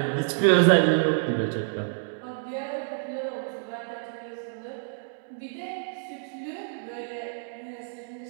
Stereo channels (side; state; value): left; silent; digital silence